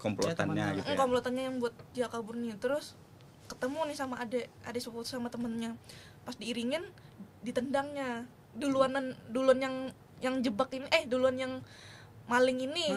komplotannya gitu ya. Komplotannya yang buat dia kabur nih. Terus ketemu nih sama adik sepupu sama temennya, pas diiringin ditendangnya duluan yang jebak ini, duluan yang maling ini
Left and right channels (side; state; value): both; identical; correlation 1.00